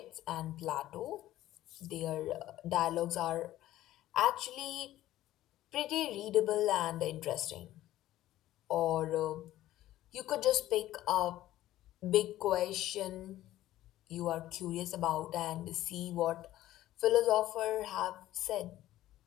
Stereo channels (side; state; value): right; quieter; 14.4 dB